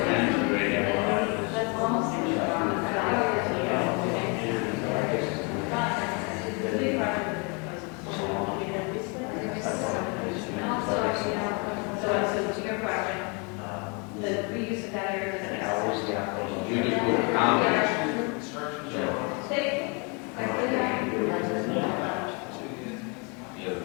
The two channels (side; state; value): right; quieter; 33.1 dB